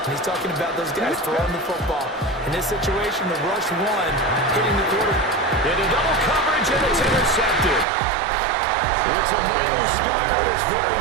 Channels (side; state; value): left; drops out; at 7.9 s